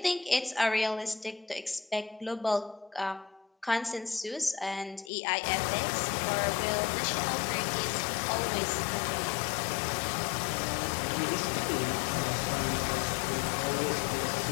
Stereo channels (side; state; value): right; drops out; at 5.1 s